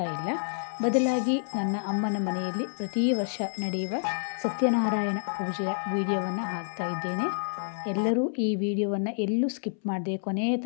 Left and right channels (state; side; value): silent; right; 59 dB below the other